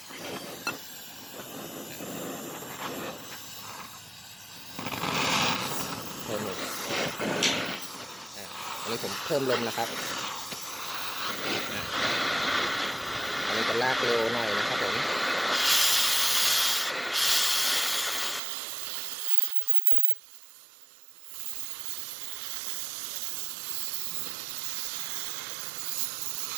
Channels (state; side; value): drops out; left; at 18.4 s